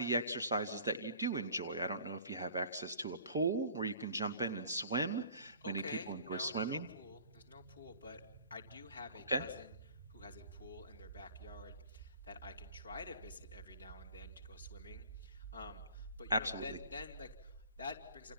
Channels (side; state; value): both; inverted; correlation -0.48